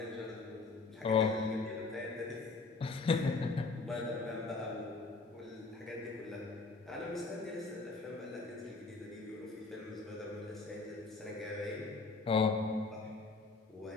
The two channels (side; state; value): right; quieter; 3.9 dB